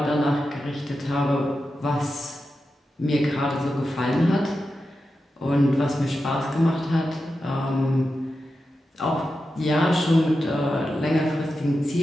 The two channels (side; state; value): both; normal; correlation 0.90